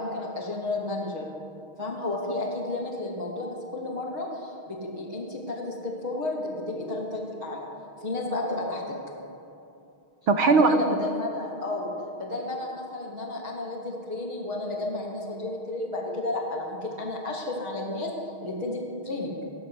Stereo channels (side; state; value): left; late; 6.4 ms